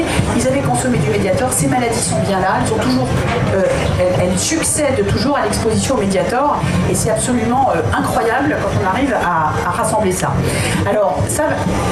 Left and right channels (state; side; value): identical; both; correlation 1.00